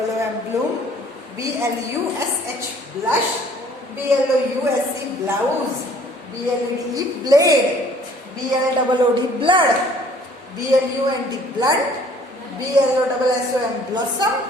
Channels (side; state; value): both; normal; correlation 0.56